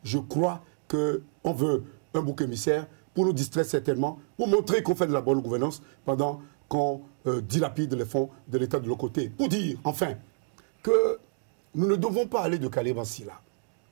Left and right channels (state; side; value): silent; left; digital silence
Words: je crois qu'on veut un bouc émissaire pour nous distraire certainement, pour montrer qu'on fait de la bonne gouvernance pendant qu'on dilapide les fonds de l'État de l'autre côté. Pour dire, enfin, que nous ne devons pas aller de Calais-Bancy là.